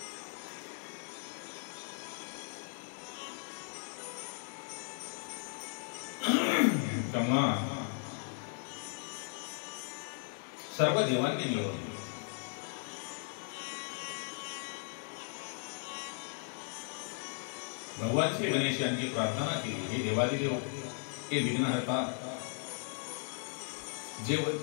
तेव्हा सर्व देवांनी मिळवले. भगवान श्री गणेश यांची प्रार्थना केली, हे देवादिदेव, हे विघ्नहर्ता, जे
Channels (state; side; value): silent; right; 53 dB below the other